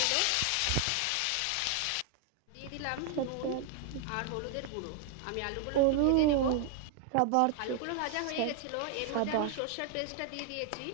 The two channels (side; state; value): both; different; correlation 0.00